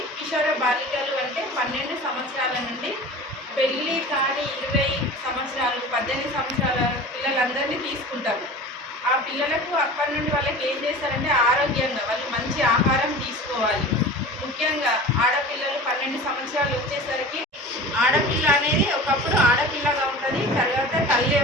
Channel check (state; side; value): normal; both; correlation 0.37